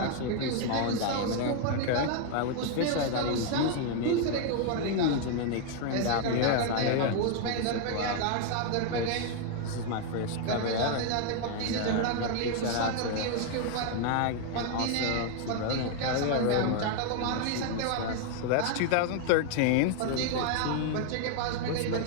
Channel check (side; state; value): both; different; correlation 0.00